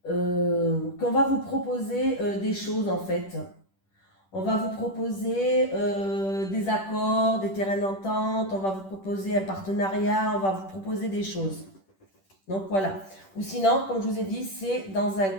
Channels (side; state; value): right; late; 10 ms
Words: qu'on va vous proposer des choses en fait. On va vous proposer des accords, des terrains d'entente, on va vous proposer un partenariat, on va vous proposer des choses. Donc voilà. Ou sinon, comme je vous ai dit, c'est dans un